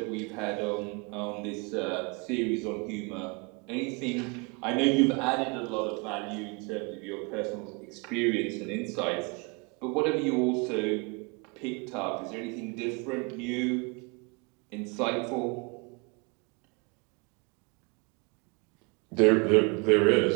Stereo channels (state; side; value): quieter; left; 30.7 dB